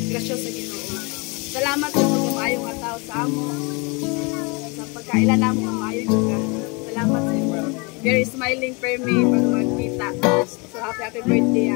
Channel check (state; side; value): quieter; right; 29.7 dB